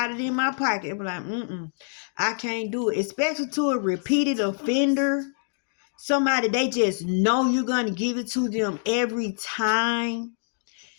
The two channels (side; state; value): right; silent; digital silence